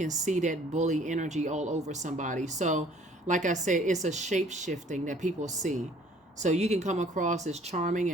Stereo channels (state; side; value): normal; both; correlation 0.56